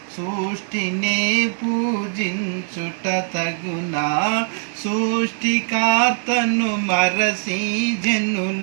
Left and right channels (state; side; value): silent; left; 57 dB below the other